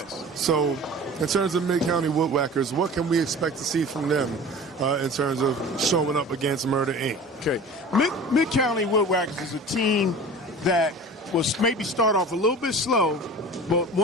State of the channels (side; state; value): both; normal; correlation 0.39